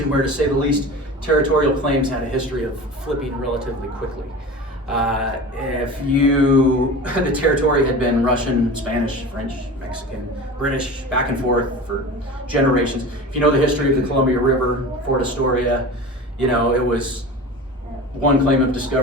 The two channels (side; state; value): both; normal; correlation 0.33